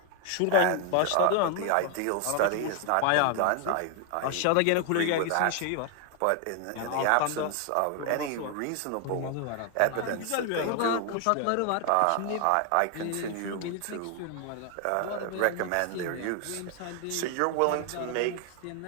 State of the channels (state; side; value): different; both; correlation 0.00